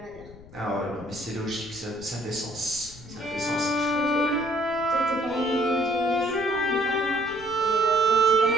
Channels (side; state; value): left; noise; rumble, 19 dB below the sound